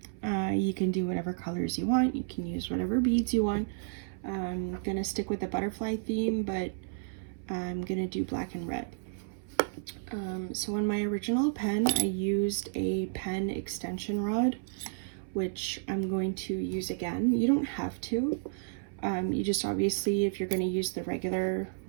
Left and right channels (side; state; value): left; silent; 57 dB below the other